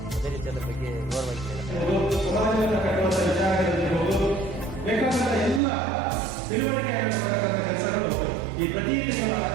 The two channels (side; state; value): left; drops out; at 5.6 s